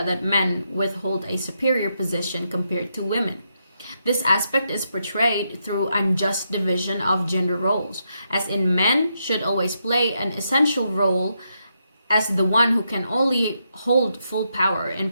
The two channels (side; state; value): both; inverted; correlation -0.81